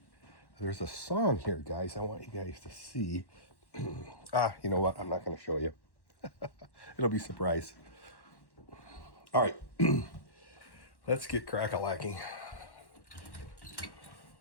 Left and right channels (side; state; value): right; late; 1.1 ms